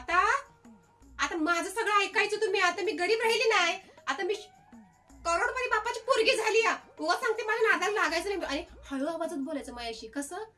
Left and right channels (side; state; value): both; identical; correlation 1.00